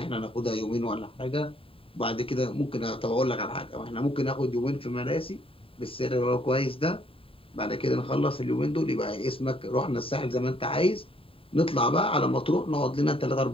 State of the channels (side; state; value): right; late; 0.27 ms